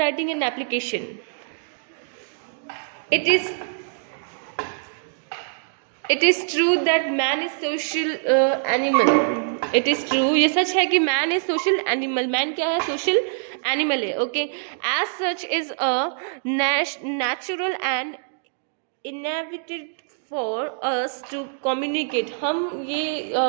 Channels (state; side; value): silent; left; digital silence